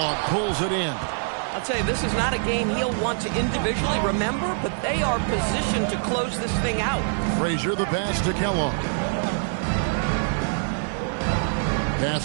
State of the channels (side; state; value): left; silent; digital silence